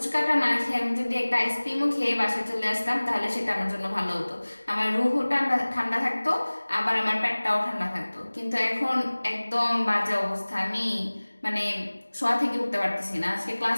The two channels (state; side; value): inverted; both; correlation -1.00